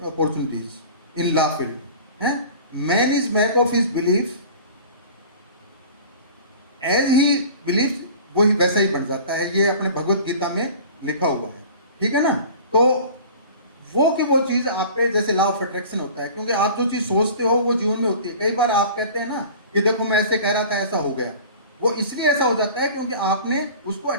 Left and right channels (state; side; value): inverted; both; correlation -0.41